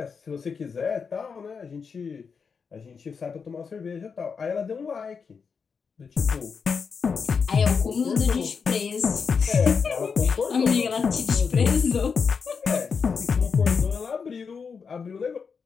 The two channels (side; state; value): right; quieter; 5.7 dB